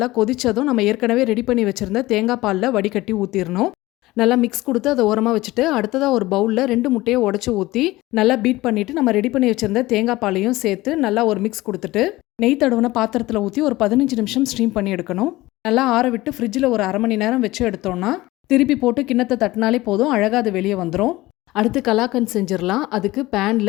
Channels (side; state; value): right; quieter; 18.6 dB